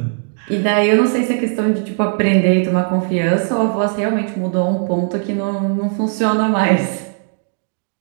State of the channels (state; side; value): silent; left; 68 dB below the other